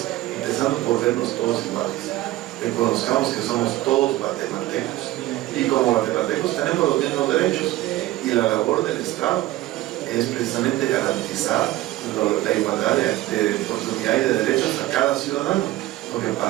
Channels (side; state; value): left; quieter; 16.2 dB